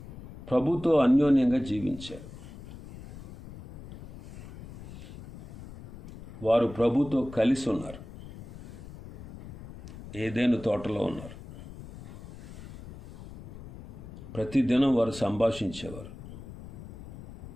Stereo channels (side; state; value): left; noise; rumble, 15 dB below the sound